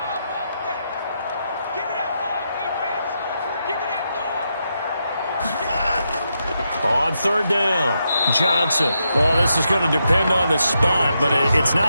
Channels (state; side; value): inverted; both; correlation -0.83